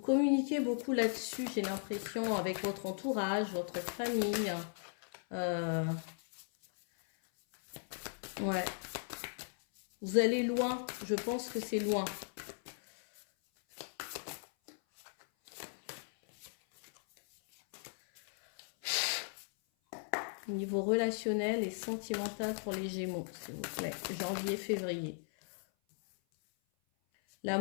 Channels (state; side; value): silent; right; 53 dB below the other